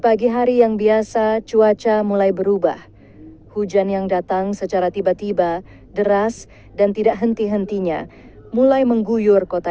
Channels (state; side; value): identical; both; correlation 1.00